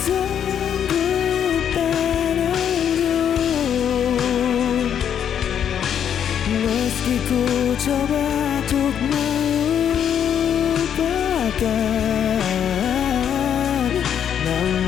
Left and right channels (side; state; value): right; quieter; 8.9 dB